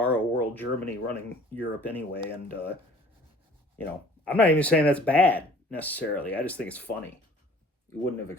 world Germany running Europe anyway. And, you know, I'm not even saying that's bad necessarily. I just think it's funny. You wouldn't have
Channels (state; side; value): normal; both; correlation 0.51